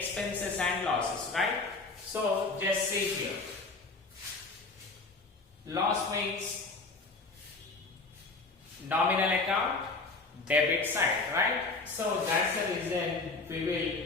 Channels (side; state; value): right; quieter; 3.7 dB